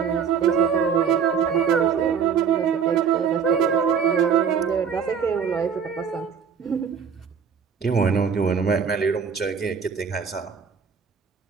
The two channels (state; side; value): quieter; left; 6.9 dB